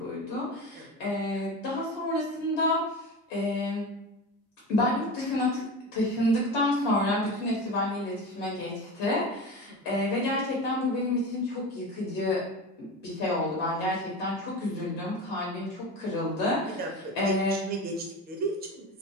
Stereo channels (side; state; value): both; normal; correlation 0.28